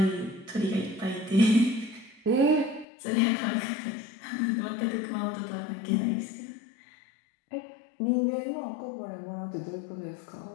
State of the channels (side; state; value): right; drops out; at 2.9 s